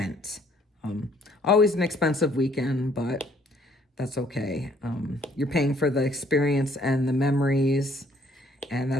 Always an expensive weekend, but that's okay. You're paying for the experience and the memories, and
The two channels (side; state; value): both; normal; correlation 0.63